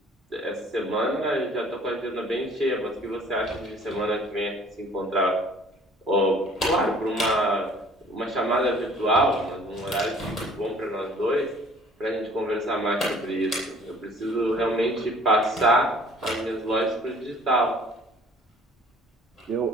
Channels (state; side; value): normal; both; correlation 0.53